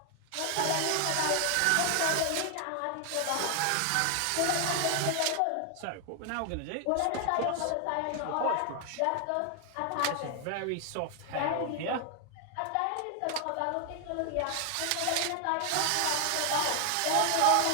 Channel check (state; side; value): different; both; correlation 0.00